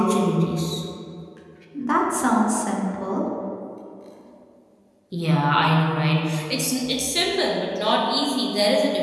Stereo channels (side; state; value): both; identical; correlation 1.00